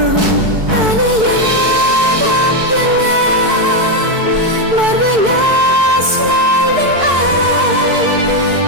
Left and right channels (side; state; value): left; late; 4.6 ms